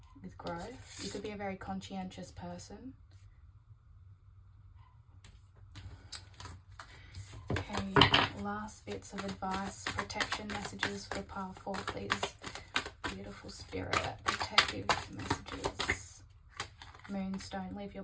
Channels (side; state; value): both; identical; correlation 1.00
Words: with growth. You could be a very conscientious person. Okay, last bits of advice, protection messages for pile 4, please. Beautiful spirit, protective messages. Moonstone, live your